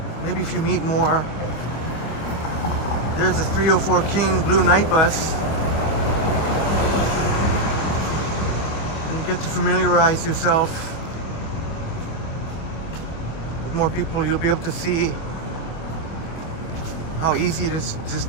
if you meet more. There's a 304 King Blue Night Bus. And you get to familiarize yourself with more people, you'll be able to see how easy it is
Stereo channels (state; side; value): late; right; 25 ms